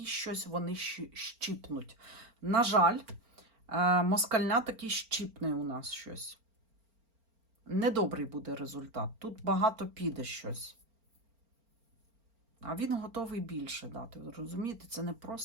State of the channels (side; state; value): left; late; 4.4 ms